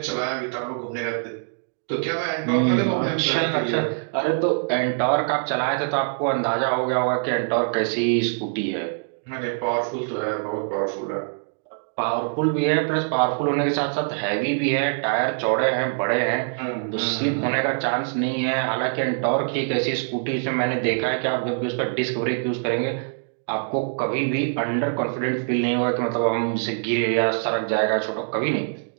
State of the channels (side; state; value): left; silent; digital silence